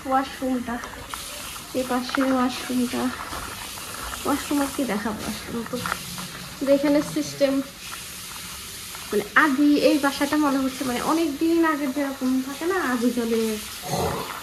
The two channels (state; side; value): identical; both; correlation 1.00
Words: ওয়াশরুমটা, এই পাশে ওয়াশরুমটা। ওয়াশরুম আর কি দেখাবো, ওয়াশরুম তো এখানে সিস্টেম, মানে আদি এই বাসাটা মনে হচ্ছে মানে অনেক দিন আগের যেরকম থাকে না, আদি জলে